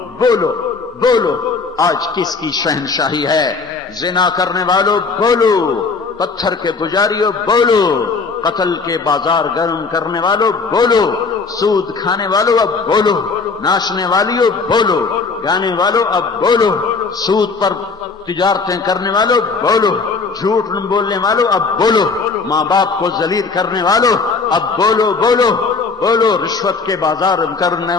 بولو بولو آج کس کی شہنشاہی ہے؟ زنا کرنے والوں بولو، پتھر کے پجاریوں بولو، قتل کے بازار گرم کرنے والوں بولو، سود کھانے والوں اب بولو، ناچنے والیوں بولو، گانے والوں اب بولو، سود پر تجارتیں کرنے والوں بولو، جھوٹ بولنے والوں اب بولو، ماں باپ کو ذلیل کرنے والوں اب بولو بولو بولو، رشوت کے بازار کرنے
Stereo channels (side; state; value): right; quieter; 4.5 dB